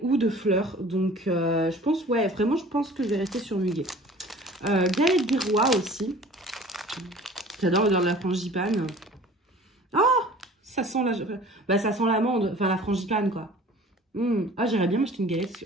ou de fleurs, donc je pense, ouais, vraiment je pense que je vais rester sur muguet. Galette des rois aussi, j'adore l'odeur de la frangipane. Oh, ça sent bah, ça sent l'amande, enfin la frangipane quoi. Ah, j'aimerais bien m'acheter une galette,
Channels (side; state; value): both; normal; correlation 0.46